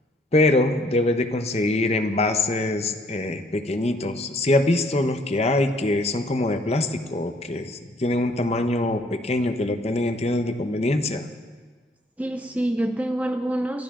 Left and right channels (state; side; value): normal; both; correlation 0.64